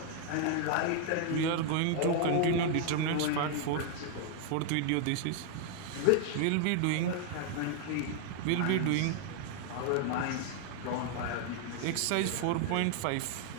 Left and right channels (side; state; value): both; different; correlation 0.00